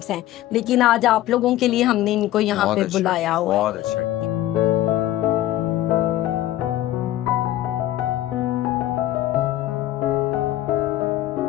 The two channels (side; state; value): right; quieter; 14.1 dB